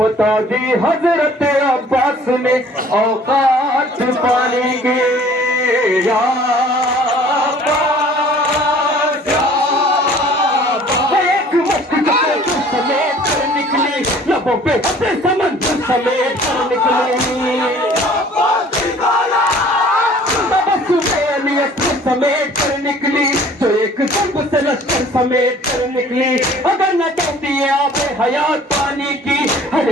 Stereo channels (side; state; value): both; normal; correlation 0.52